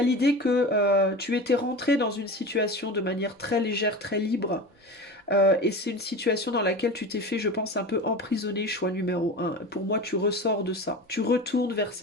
l'idée que tu étais rentré dans une situation de manière très légère, très libre, et c'est une situation dans laquelle tu t'es fait, je pense, un peu emprisonné, choix numéro un. Pour moi, tu ressors de ça. Tu retournes vers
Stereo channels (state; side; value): normal; both; correlation 0.31